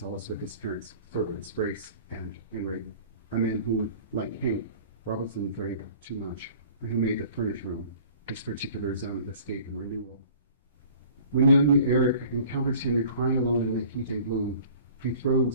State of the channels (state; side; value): inverted; both; correlation -0.48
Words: with his parents, servants, Grace and Henry, a man who, like Hank, Robinson drank too much, and who made the furnished room his particular zone of escape and renewal. When young Eric encounters Henry crying alone in the heat and gloom, he